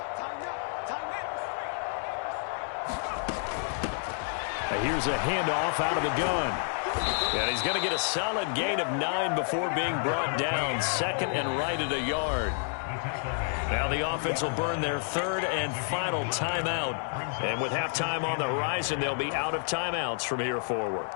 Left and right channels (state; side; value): silent; right; 58 dB below the other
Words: Here's a handoff out of the gun. And he's going to get a solid gain of 9 before being brought down. 2nd and right at a yard. Now the offense will burn their 3rd and final timeout. And with halftime on the horizon, they'll be out of timeouts from here forward.